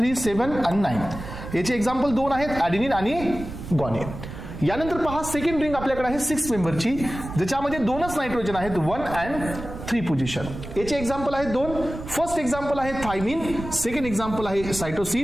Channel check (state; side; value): noise; right; rumble, 10 dB below the sound